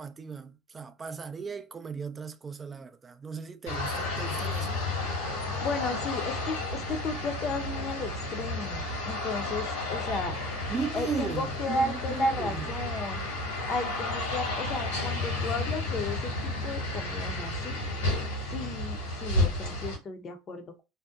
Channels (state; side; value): normal; both; correlation 0.33